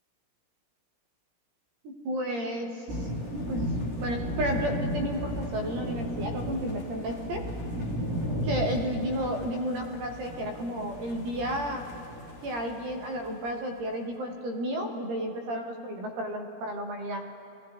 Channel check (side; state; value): left; late; 17 ms